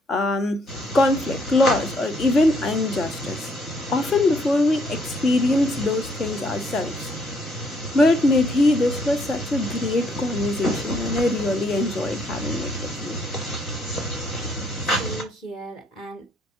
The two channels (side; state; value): both; normal; correlation 0.69